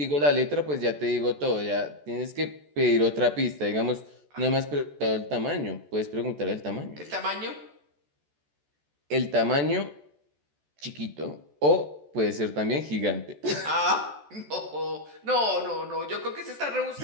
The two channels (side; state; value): left; late; 14 ms